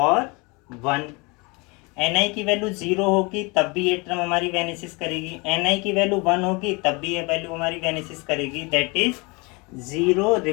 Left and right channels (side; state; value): right; quieter; 27.8 dB